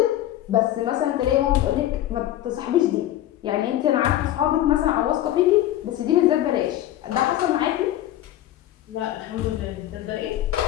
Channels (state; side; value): quieter; right; 13.3 dB